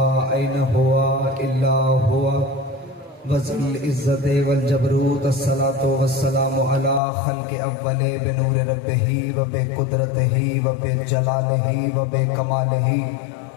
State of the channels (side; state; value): right; drops out; at 7.0 s